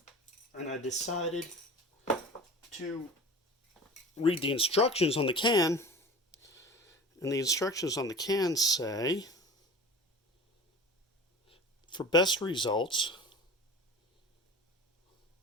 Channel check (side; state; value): both; normal; correlation 0.37